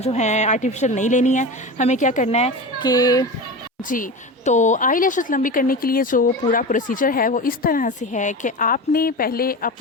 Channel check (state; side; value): normal; both; correlation 0.27